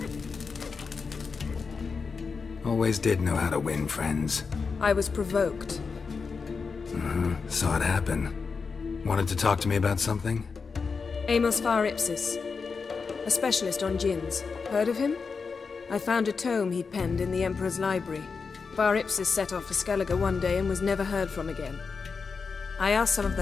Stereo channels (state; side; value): quieter; right; 5.1 dB